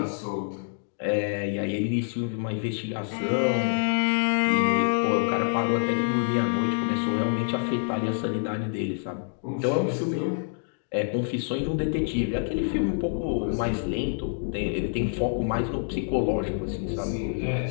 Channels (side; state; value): right; silent; digital silence